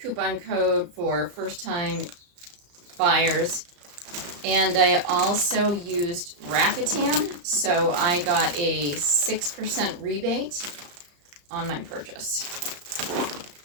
coupon code for first time buyers. And I also used Rakuten, so I got a 6% rebate on my purchase.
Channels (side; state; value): left; late; 34 ms